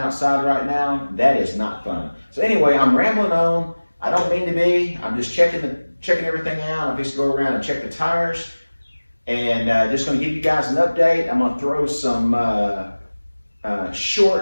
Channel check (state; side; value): inverted; both; correlation -1.00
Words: right now, that is not fun. So anyway, I'm rambling on. I don't mean to be. I'm just checking everything out. I'm just going to go around and check the tires. And just going to give you guys an update. I'm going to throw some